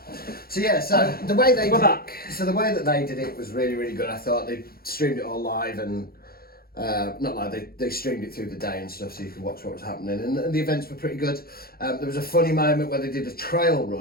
So yeah, so the way they We're did back. So the way that they did it was really, really good. I thought they streamed it all live and not live. They streamed it through the day and stuff, so you could watch what was happening. And the events were pretty good. There was a funny moment where they did a trail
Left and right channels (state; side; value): late; right; 0.44 ms